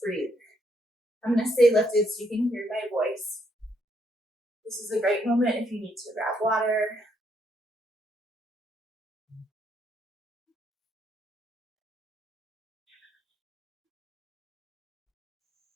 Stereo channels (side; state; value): both; normal; correlation 0.74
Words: breathe. I'm going to stay lifted so you can hear my voice. This is a great moment if you need to grab water.